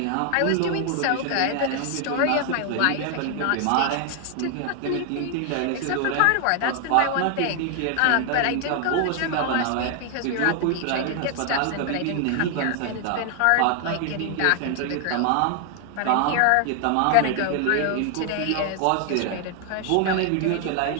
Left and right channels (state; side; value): different; both; correlation 0.00